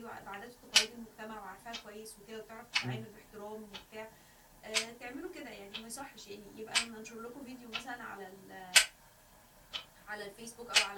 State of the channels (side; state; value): both; identical; correlation 1.00